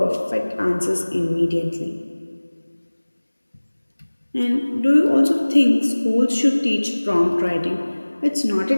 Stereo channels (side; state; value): both; inverted; correlation -1.00